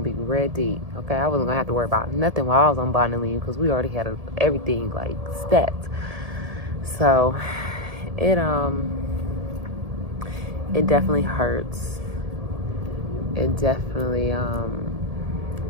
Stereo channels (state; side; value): late; left; 1.7 ms